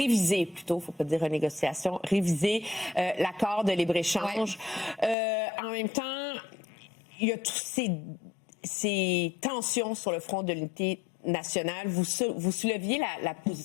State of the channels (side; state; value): right; drops out; at 5.2 s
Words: plutôt, il ne faut pas dire renégociation, réviser l'accord de libre-échange. Ouais. En même temps, il y a tous ces tensions sur le front de l'unité nationale. Vous souleviez la